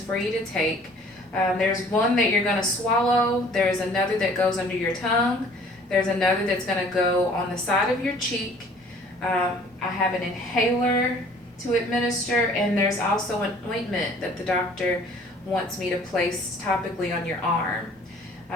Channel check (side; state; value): both; normal; correlation 0.53